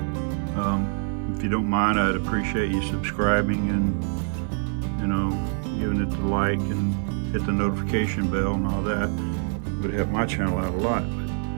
If you don't mind, I'd appreciate you subscribing and, you know, giving it the like and hit the notification bell and all that. It would help my channel out a lot.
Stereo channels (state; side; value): silent; left; 56 dB below the other